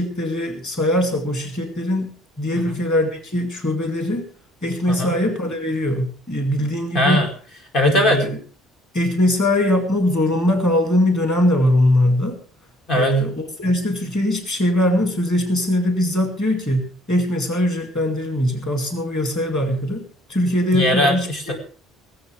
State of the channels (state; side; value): normal; both; correlation 0.61